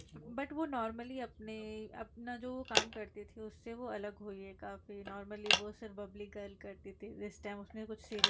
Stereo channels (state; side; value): identical; both; correlation 1.00